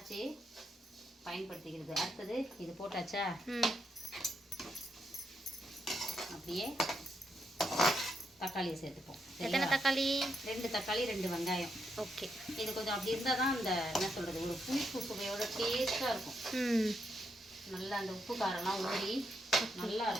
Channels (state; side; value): normal; both; correlation 0.80